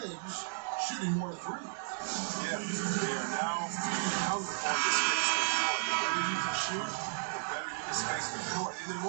shooting more threes. Yeah, they are now hungry for the space the floor. The better you can shoot, the better you can space the floor. And then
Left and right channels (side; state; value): left; silent; digital silence